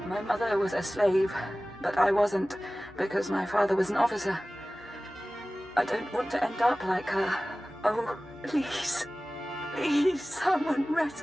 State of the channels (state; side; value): normal; both; correlation 0.97